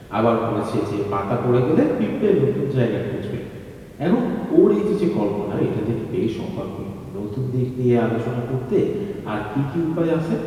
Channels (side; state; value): both; identical; correlation 1.00